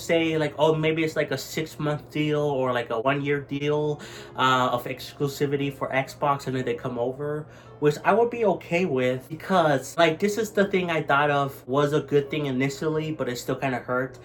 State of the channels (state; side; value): identical; both; correlation 1.00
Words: like, oh, maybe it's like a 6-month deal or like a 1-year deal of exclusivity for Xbox, and then they come over, which I would be okay with, because like this is the thing I thought of was a good thing initially, but it still kind of hurt,